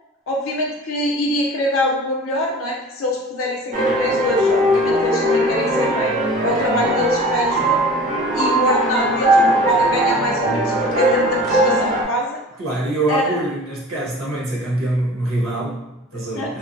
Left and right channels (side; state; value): both; normal; correlation 0.41